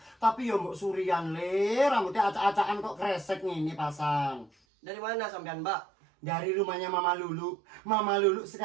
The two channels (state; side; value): drops out; left; at 4.5 s